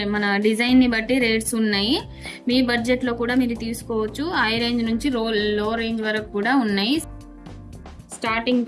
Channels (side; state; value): both; identical; correlation 1.00